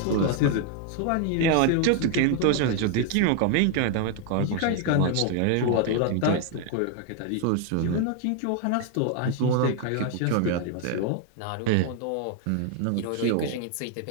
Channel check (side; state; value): both; different; correlation 0.00